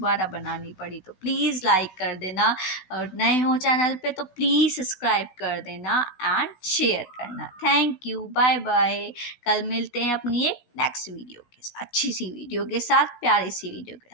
बनानी पड़ी, तो प्लीज़ लाइक कर देना, और नए हो चैनल पे तो प्लीज़ सब्सक्राइब कर देना एंड शेयर करना। Thank you, bye bye. कल मिलते हैं अपनी एक नेक्स्ट वीडियो के साथ, अच्छी सी वीडियो के साथ, प्यारी सी वीडियो के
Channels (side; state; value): right; late; 16 ms